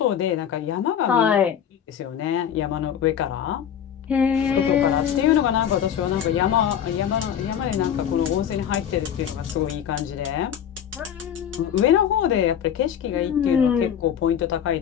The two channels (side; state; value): right; quieter; 9.0 dB